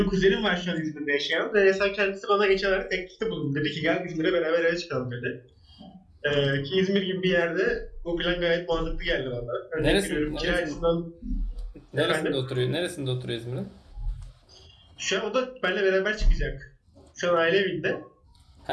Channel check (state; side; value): identical; both; correlation 1.00